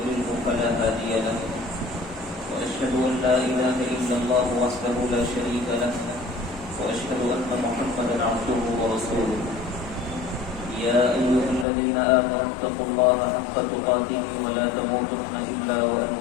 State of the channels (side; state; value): right; drops out; at 11.7 s